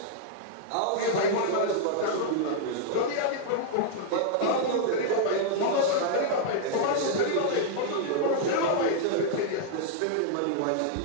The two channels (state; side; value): different; both; correlation -0.01